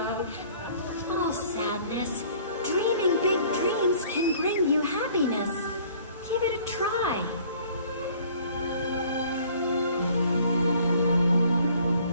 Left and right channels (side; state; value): both; inverted; correlation -0.55